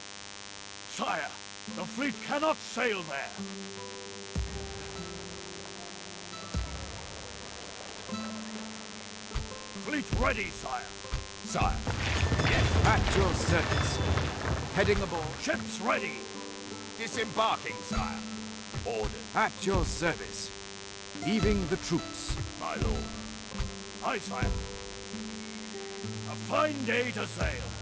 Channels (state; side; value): identical; both; correlation 1.00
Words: Sire, the fleet cannot sail there. Fleet ready, sire. Sire. At your service. Heading aboard. Ships ready. Disembarking, sire. Orders. At your service. Leaving the troops. My lord. Aye, sire. A fine day to sail.